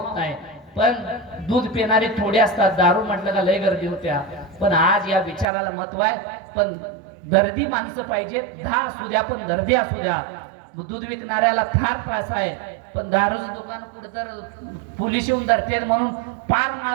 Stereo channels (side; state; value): left; drops out; at 5.5 s